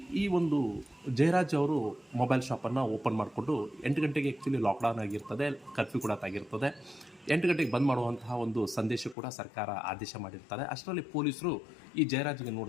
ಈ ಒಂದು ಜಯರಾಜ್ ಅವರು ಮೊಬೈಲ್ ಶಾಪನ್ನು ಓಪನ್ ಮಾಡಿಕೊಂಡು 8 ಗಂಟೆಗೆ ಆ್ಯಕ್ಚುಲಿ ಲಾಕ್ಡೌನ್ ಆಗಿರ್ತದೆ, ಕರ್ಫ್ಯೂ ಕೂಡ ಆಗಿರ್ತದೆ. 8 ಗಂಟೆಗೆ ಬಂದ್ ಮಾಡುವಂತಹ ಒಂದು ಸಂದೇಶ ಕೂಡ ಸರ್ಕಾರ ಆದೇಶ ಮಾಡಿರ್ತಾರೆ. ಅಷ್ಟರಲ್ಲಿ ಪೊಲೀಸರು ಈ ಜಯರಾಜ್ಗೆ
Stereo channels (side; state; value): right; drops out; at 9.2 s